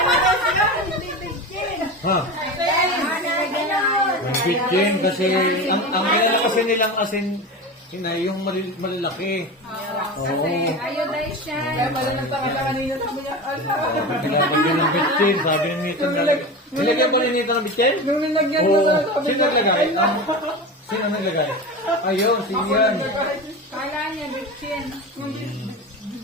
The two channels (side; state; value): both; normal; correlation 0.26